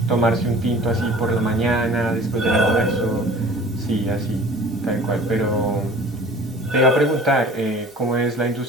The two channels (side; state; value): both; normal; correlation 0.45